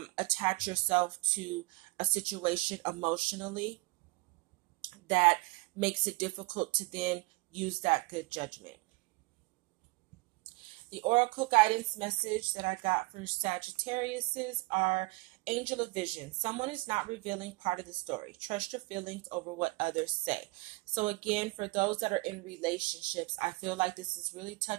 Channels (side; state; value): left; quieter; 24.2 dB